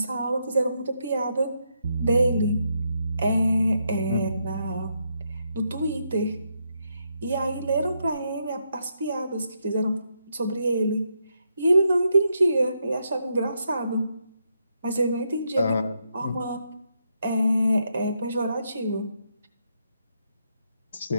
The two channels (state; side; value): inverted; both; correlation -0.79